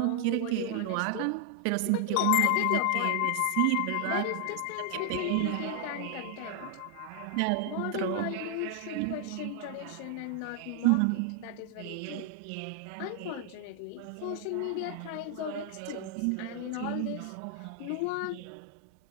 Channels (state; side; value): different; both; correlation 0.00